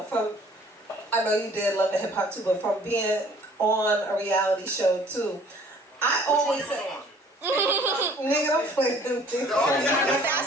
know you did Love and Hip Hop too, but from being on a reality show too, I always say, nigga, don't play them things.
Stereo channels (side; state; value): both; normal; correlation 0.55